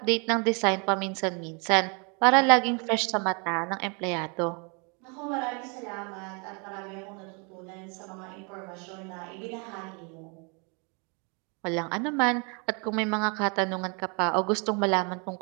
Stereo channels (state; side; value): quieter; left; 34.1 dB